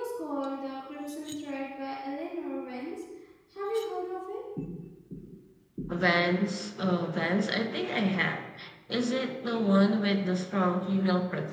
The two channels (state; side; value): identical; both; correlation 1.00